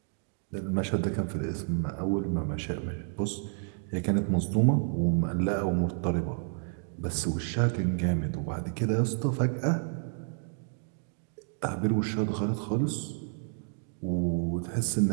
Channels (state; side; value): silent; left; 58 dB below the other